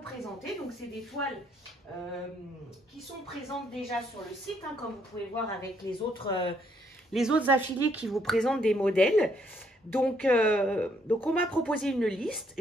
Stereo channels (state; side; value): normal; both; correlation 0.70